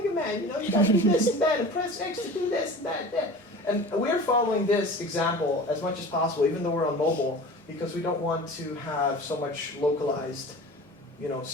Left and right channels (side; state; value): both; normal; correlation 0.38